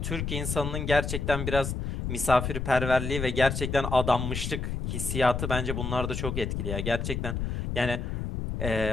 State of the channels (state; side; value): noise; left; rumble, 3 dB below the sound